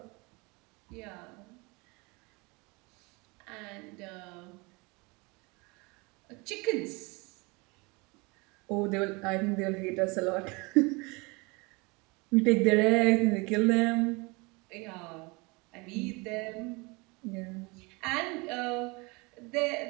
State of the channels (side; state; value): left; quieter; 27.1 dB